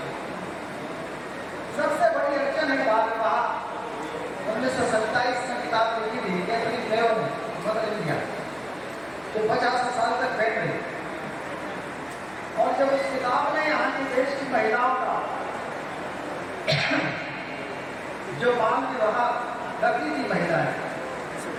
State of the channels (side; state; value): left; noise; hum, 28 dB below the sound